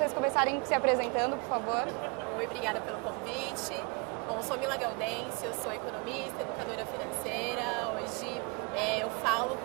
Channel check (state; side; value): quieter; left; 33.1 dB